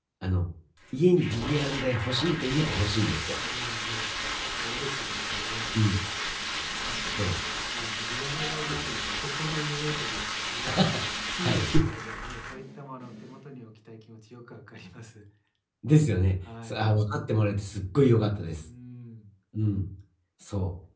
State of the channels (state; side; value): identical; both; correlation 1.00